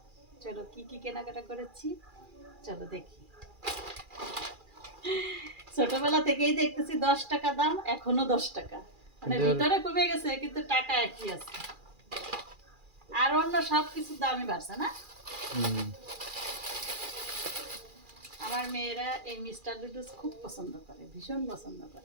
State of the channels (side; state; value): left; late; 2.4 ms